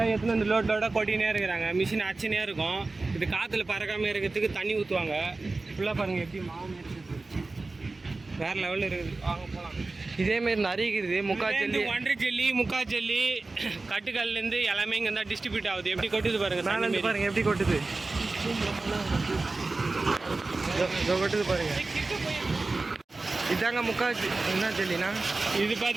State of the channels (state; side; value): quieter; left; 3.4 dB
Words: எடுத்துன்னு வந்து லோடாக கொட்டினே இருக்கிறாங்க. மிஷின் அச்சுனே இருக்கும். இது காற்றுல பறக்காமல் இருக்கிறதுக்கு தண்ணி ஊற்றுவாங்க. ஃபுல்லாக பாருங்கள் எப்படி மாவு இருக்குது, வேறு லெவலில் இருக்குது. வாங்க போகலாம். இதேமாரி நிறைய இருக்குது. முக்கால் ஒன்றரை ஜெல்லி, முக்கால் ஜெல்லி, கட்டுக்கல்லேருந்து எல்லாமே இங்கே தான் டிஸ்ட்ரிபியூட் ஆகுது. எப்படி கொட்டுது பாருங்கள். மேலே பாருங்கள் எப்படி கொட்டுது. கொட்டுது பாருங்க. இதாங்க முக்கால் என்ன ஜெல்லினா? இது